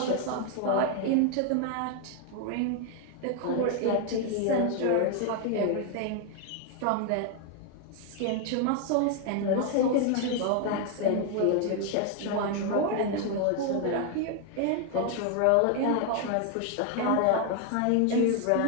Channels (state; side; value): different; both; correlation 0.00